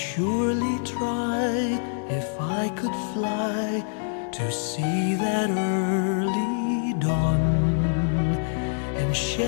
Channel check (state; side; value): silent; right; digital silence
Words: try if I could fly to see that early dawn and